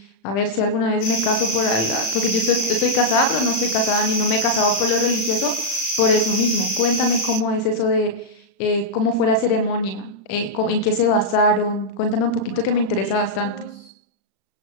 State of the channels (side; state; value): right; late; 35 ms